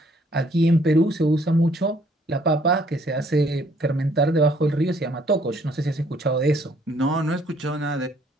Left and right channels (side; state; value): both; normal; correlation 0.63